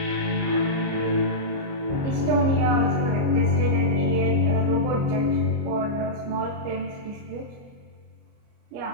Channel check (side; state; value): left; late; 29 ms